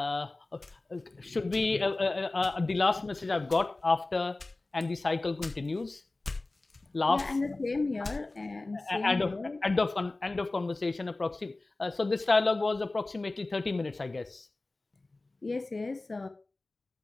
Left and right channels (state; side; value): quieter; right; 3.1 dB